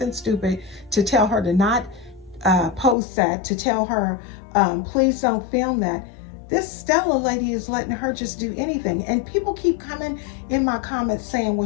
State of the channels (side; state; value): right; drops out; at 3.0 s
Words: stupid, to tell her to not post that, to tell her, please don't film that, this Stella lady is letting her just do anything. And people keep coming in my comments saying,